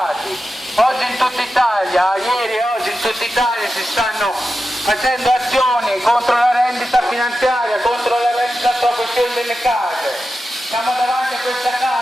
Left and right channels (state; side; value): normal; both; correlation 0.91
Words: Oggi in tutta Italia, ieri e oggi in tutta Italia si stanno facendo azioni contro la rendita finanziaria, contro la rendita sulla questione delle case. Siamo davanti a questa